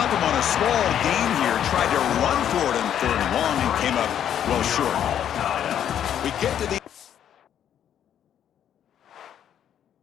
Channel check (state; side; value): quieter; right; 9.8 dB